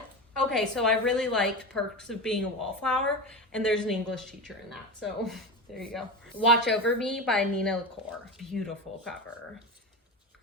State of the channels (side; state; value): both; normal; correlation 0.23